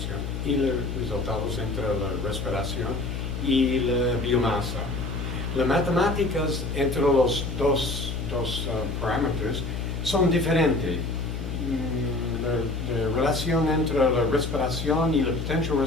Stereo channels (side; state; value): left; noise; hum, 4 dB below the sound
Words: y los resultados entre la respiración y la biomasa. Las matemáticas entre los dos parámetros son diferentes. La relación entre la respiración y la potential